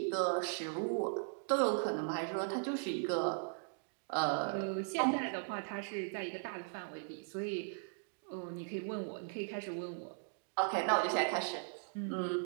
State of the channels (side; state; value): left; silent; digital silence